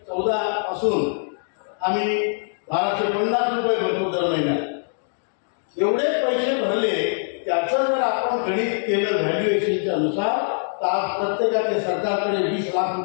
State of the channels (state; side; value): silent; right; digital silence